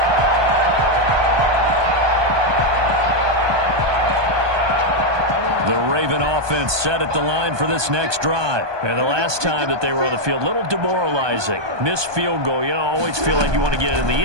The Raven offense set at the line for this next drive. And the last time that they were on the field, a little demoralizing. Missed field goal. You always feel like you want to get it in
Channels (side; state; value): left; late; 1.2 ms